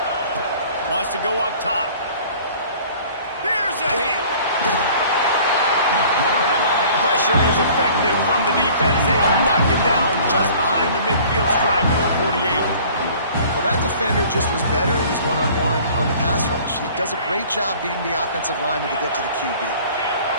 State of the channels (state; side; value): inverted; both; correlation -0.49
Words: Wants to go up top. Here's a hit. Pressure is effective from the defense. They knock him down just behind the midfield stripe at the 48. Well, that defender just was better in his one-on-one on the pass rush. He does a great job beating the offensive lineman to get to the QB.